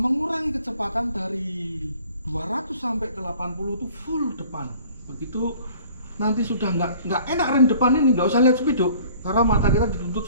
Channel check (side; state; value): both; inverted; correlation -0.51